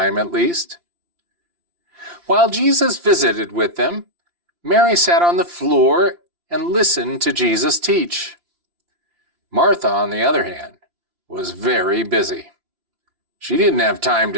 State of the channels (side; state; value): left; late; 5.8 ms